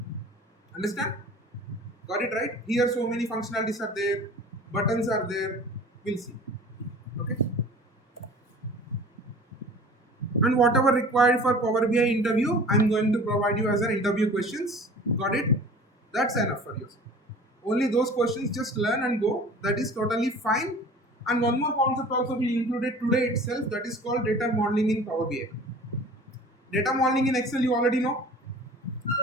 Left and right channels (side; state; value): both; normal; correlation 0.44